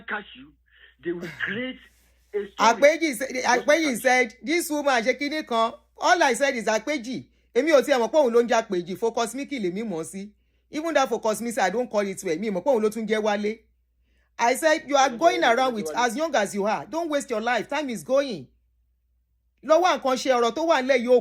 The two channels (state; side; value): identical; both; correlation 1.00